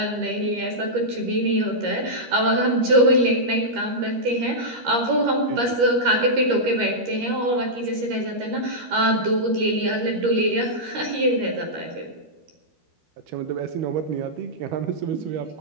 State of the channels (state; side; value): late; left; 13 ms